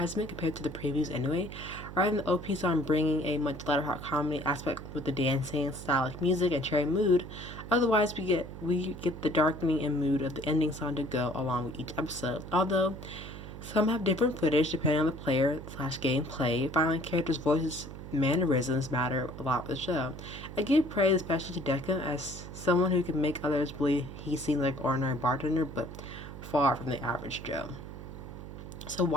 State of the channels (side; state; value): right; noise; hum, 11 dB below the sound